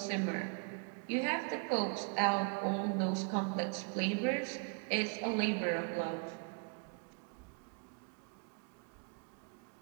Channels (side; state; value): left; quieter; 38.3 dB